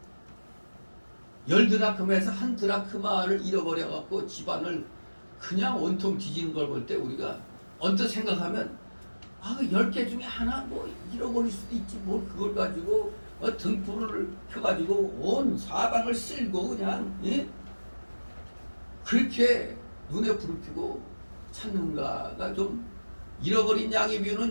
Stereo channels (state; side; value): inverted; both; correlation -1.00